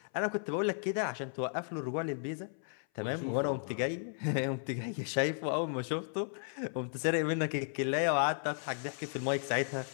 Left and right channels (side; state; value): right; silent; 55 dB below the other